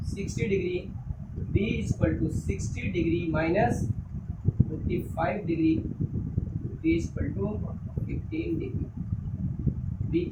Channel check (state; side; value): identical; both; correlation 1.00